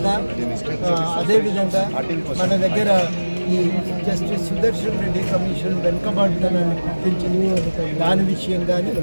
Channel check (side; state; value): both; inverted; correlation -1.00